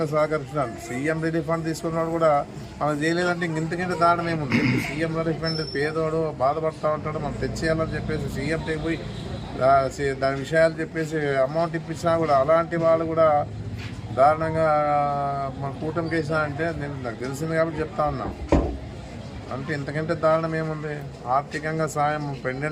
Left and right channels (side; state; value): both; identical; correlation 1.00